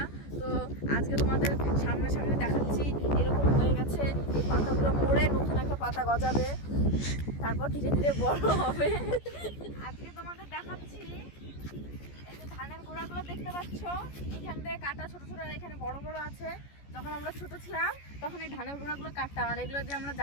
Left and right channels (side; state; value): right; late; 14 ms